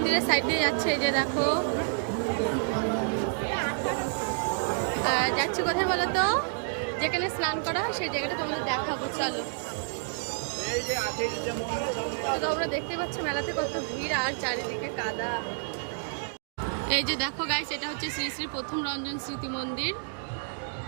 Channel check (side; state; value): left; silent; digital silence